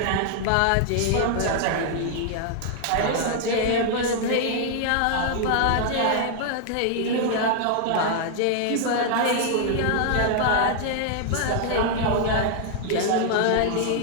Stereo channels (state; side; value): different; both; correlation 0.00